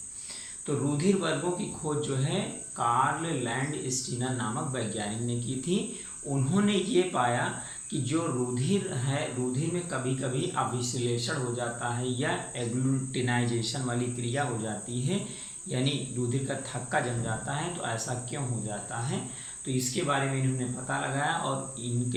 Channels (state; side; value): identical; both; correlation 1.00